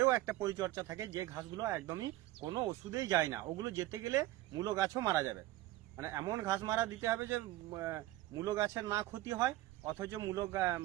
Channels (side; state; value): left; quieter; 16.2 dB